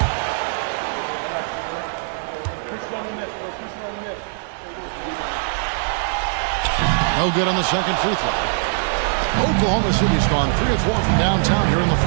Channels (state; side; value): silent; left; digital silence